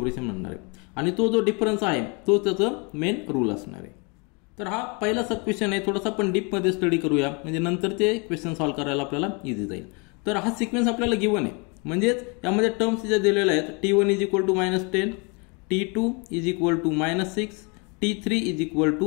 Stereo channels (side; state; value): right; quieter; 32.0 dB